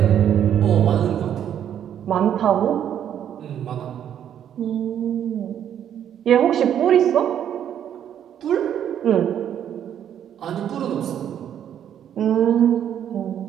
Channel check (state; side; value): quieter; left; 9.7 dB